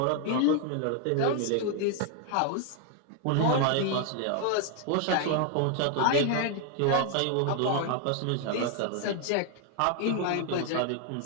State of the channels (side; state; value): both; different; correlation 0.00